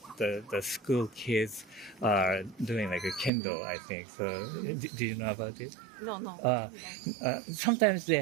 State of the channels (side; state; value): left; drops out; at 3.3 s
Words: the school kids are doing like a kendo, I think. So, do you know about it? No. Sometimes they